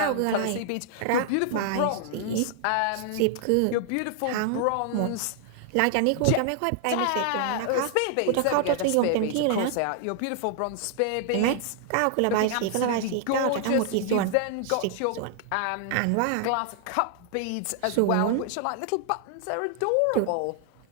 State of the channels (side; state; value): both; different; correlation 0.00